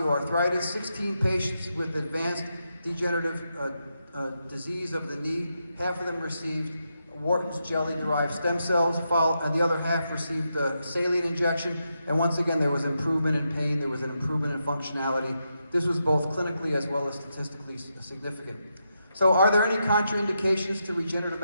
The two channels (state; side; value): inverted; both; correlation -0.84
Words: 16 patients with advanced degenerative disease of the knee. Half of them received Wharton's jelly-derived stem cells, and the other half received a saline injection. And once again, there was improvement in pain, there was an improvement in functionality. This was both clinically as well as statistically significant. So are there any contraindications to regenerative